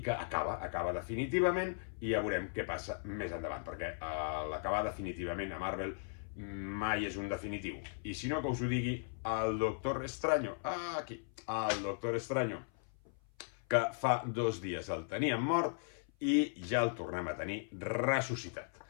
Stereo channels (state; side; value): silent; right; 53 dB below the other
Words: acaba definitivament, i ja veurem què passa més endavant, perquè l'acabar definitivament a Marvel mai és un definitiu. I si no, que us ho digui el Doctor Extraño, aquí, el Doctor Extraño, que fa 2 dies el teníem mort i ja el tornem a tenir ressuscitat.